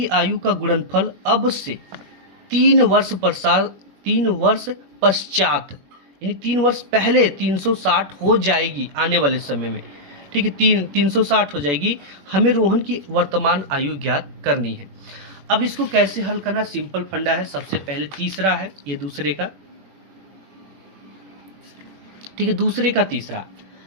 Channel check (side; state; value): left; late; 21 ms